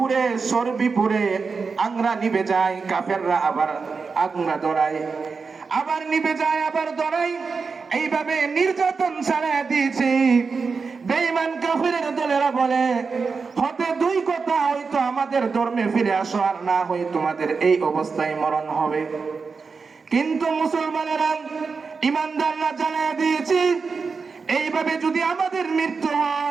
চর্বি পুড়ে আংরা নিভে যায়, কাফেররা আবার আংরা ধরায়, আবার নিভে যায়, আবার ধরায়। এইভাবে নির্যাতন চালায় দিয়েছে। বেঈমান কাফেরের দলেরা বলে হতে দুই কথা, হয়তো আমাদের ধর্মে ফিরে আসো, আর না হয় তোমাদের এই অবস্থায় মরণ হবে। কিন্তু মুসলমানেরা, ইমানদাররা জানায় দিয়েছে এইভাবে যদি আমাদের মৃত্যু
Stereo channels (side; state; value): left; quieter; 4.9 dB